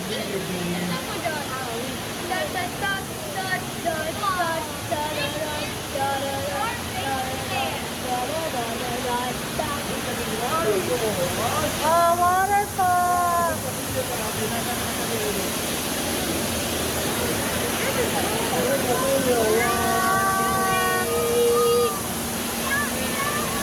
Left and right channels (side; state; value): both; identical; correlation 1.00